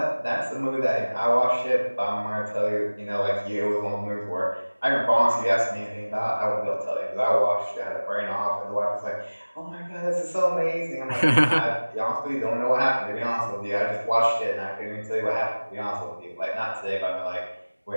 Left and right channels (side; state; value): both; inverted; correlation -1.00